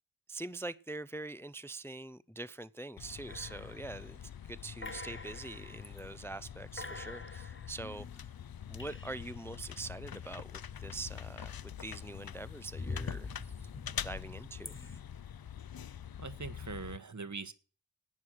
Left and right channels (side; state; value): both; normal; correlation 0.38